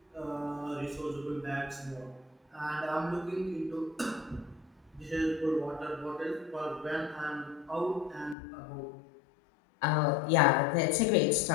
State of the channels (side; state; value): right; drops out; at 8.3 s